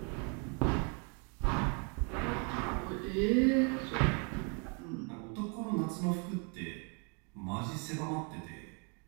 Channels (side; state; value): left; quieter; 36.2 dB